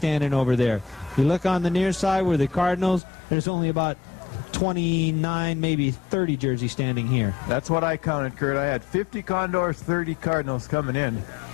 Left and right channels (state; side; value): drops out; right; at 3.0 s